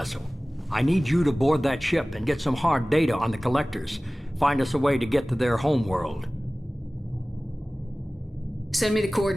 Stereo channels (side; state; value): both; normal; correlation 0.98